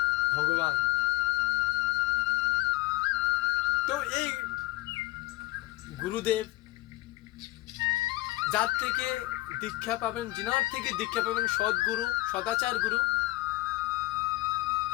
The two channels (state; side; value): quieter; right; 18.4 dB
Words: ভগবান। তো এই গুরুদেব যার থেকে দীক্ষা পাবেন, যিনার থেকে দীক্ষা পাবেন, সদ্গুরু, সদাচার গুরু,